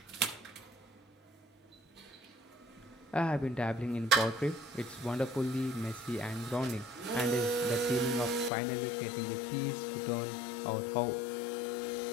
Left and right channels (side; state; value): right; drops out; at 8.5 s